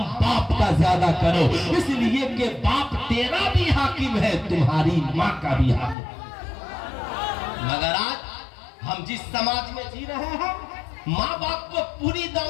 باپ کا زیادہ کرو، اس لیے کہ باپ تیرا بھی حاکم ہے، تمہاری ماں کا بھی حاکم ہے. مگر آج ہم جس سماج میں جی رہے ہیں ماں باپ کو پوری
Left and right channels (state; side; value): drops out; right; at 6.0 s